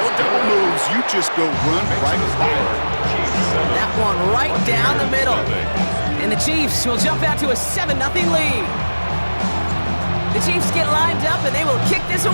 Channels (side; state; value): both; inverted; correlation -1.00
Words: double moves. You just go run right by it. That one right down the middle. And the Chiefs will jump out to a 7-0 lead. The Chiefs get lined up and they will kick this